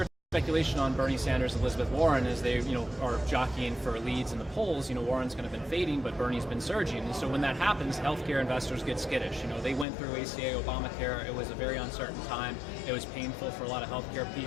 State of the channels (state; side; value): drops out; right; at 9.9 s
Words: Speculation on Bernie Sanders and Elizabeth Warren as they, are jockeying for leads in the polls. Warren's kind of been fading, but Bernie's been surging. And so when that happens, healthcare investors get skittish. They went through ACA, Obamacare. It was a very uncertain time. It was painful for a lot of healthcare